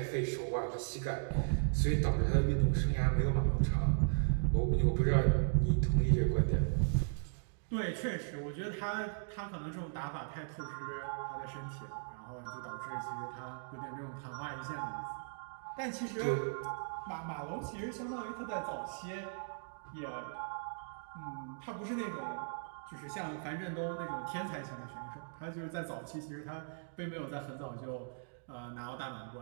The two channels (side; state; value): left; silent; digital silence